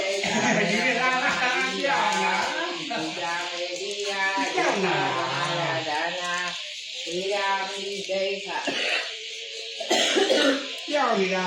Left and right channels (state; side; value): identical; both; correlation 1.00